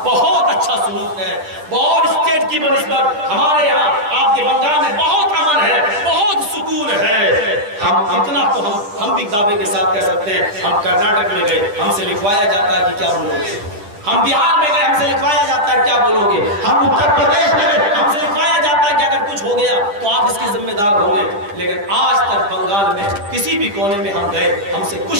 बहुत अच्छा सलूक है। बहुत स्टेट की बनिस्बत हमारे यहाँ आपके बंगाल में बहुत अमन है, बहुत सुकून है। हम इतना तो हम भी दावे के साथ कह सकते हैं। हम कर्नाटक में गए, हमसे लिखवाया जाता है कि क्या बोलोगे। हम बिहार में गए, हमसे लिखवाया जाता है क्या बोलोगे। हम उत्तर प्रदेश में गए, हमसे लिखवाया जाता है कि अगर कुछ हो गया तो आप इसके जिम्मेदार होंगे। लेकिन आज तक बंगाल में किसी भी कोने में हम गए, हमसे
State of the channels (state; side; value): late; left; 9.9 ms